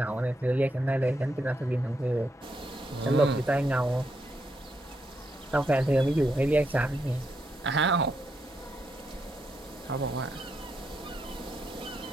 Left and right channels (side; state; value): both; normal; correlation 0.80